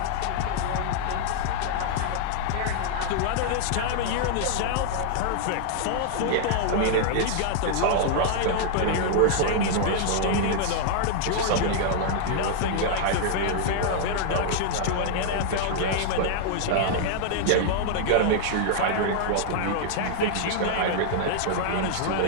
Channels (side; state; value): both; different; correlation -0.01